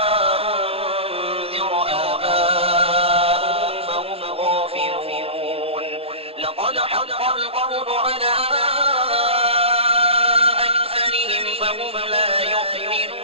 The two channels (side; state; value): left; late; 0.28 ms